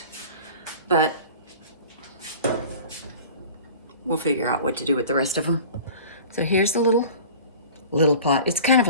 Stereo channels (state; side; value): inverted; both; correlation -0.41